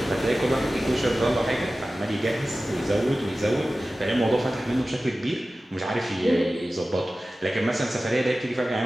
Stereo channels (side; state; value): both; normal; correlation 0.96